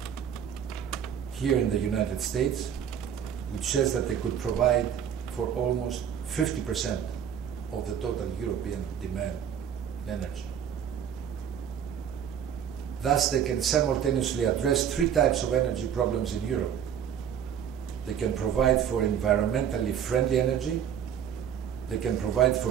here in the United States, which says that they could provide for almost 50% of the total European demand in energy. Thus, they can simultaneously address three types of energy problems in Europe. They can provide for environmentally friendly energy, they can provide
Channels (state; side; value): quieter; left; 8.8 dB